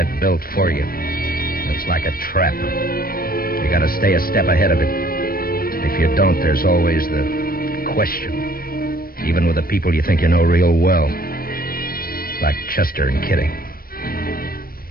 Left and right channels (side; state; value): right; late; 0.43 ms